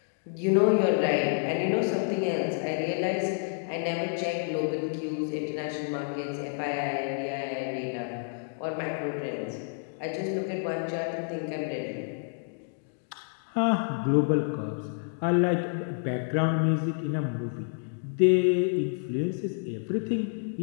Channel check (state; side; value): silent; right; digital silence